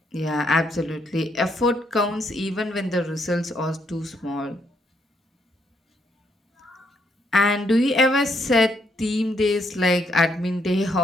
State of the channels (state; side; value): normal; both; correlation 0.74